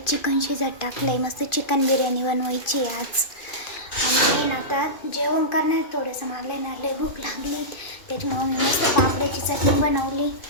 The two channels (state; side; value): late; right; 2.4 ms